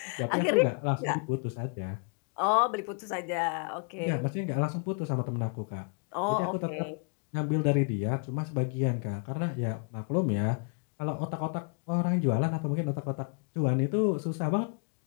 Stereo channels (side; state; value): right; quieter; 39.6 dB